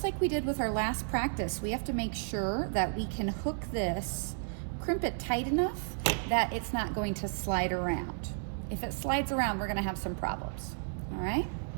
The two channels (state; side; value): silent; left; 56 dB below the other